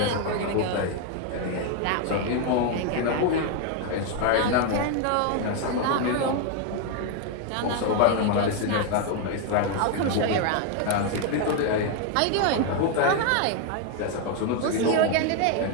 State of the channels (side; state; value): both; different; correlation 0.01